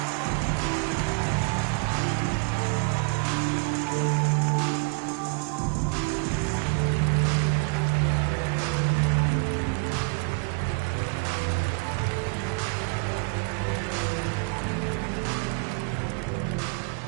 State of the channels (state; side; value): quieter; left; 33.8 dB